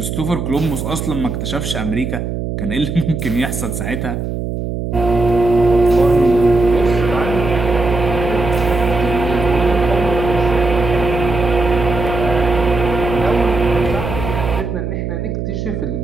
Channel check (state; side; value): noise; right; hum, 4 dB below the sound